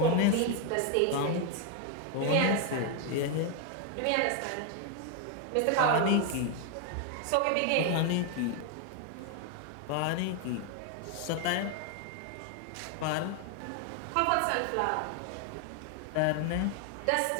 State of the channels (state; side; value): different; both; correlation 0.01